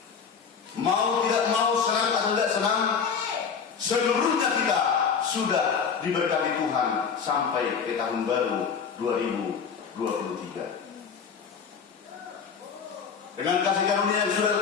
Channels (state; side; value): quieter; right; 6.4 dB